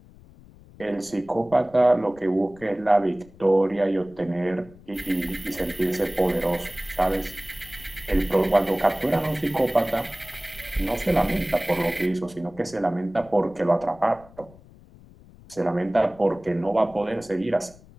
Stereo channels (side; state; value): left; noise; rumble, 23 dB below the sound